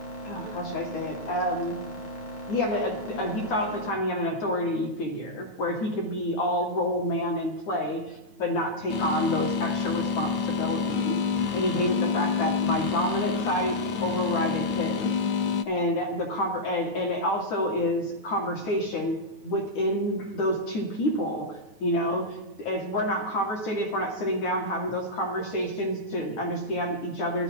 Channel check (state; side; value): late; right; 9.2 ms